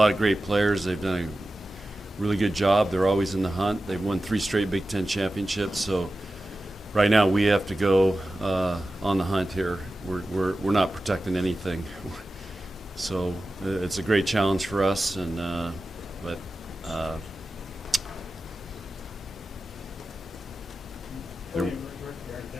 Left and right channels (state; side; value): normal; both; correlation 0.94